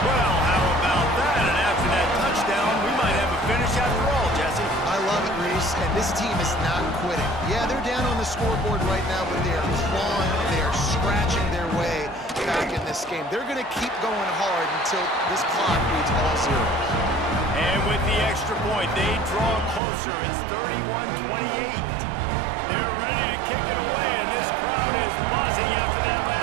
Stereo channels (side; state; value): left; drops out; at 19.8 s